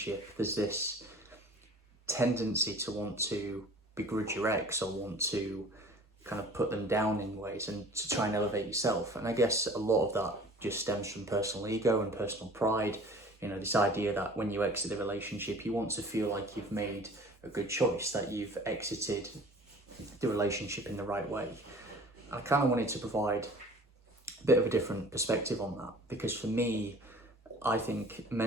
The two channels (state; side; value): normal; both; correlation 0.46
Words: there's this tendency to want to begrudge your ex or want to kind of put them down in ways and to try and elevate yourself. And I guess a lot of that just stems from personal ego and personal pride. You know, this idea that when you exit the relationship, you want to feel like you've made a good choice, that you've exited the relationship in the right way. I kind of wanted to provide a bit of a different perspective on that, because for me, I think